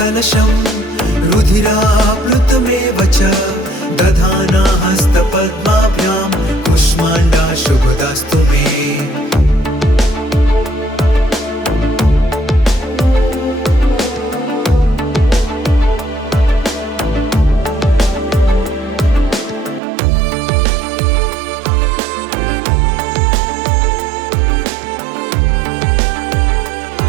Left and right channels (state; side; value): drops out; left; at 19.8 s